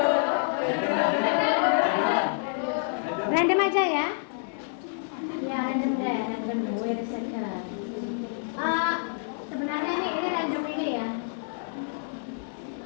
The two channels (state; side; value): silent; right; digital silence